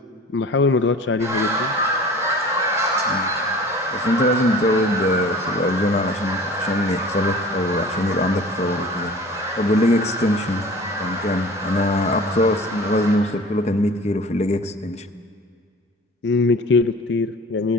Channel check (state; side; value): normal; both; correlation 0.43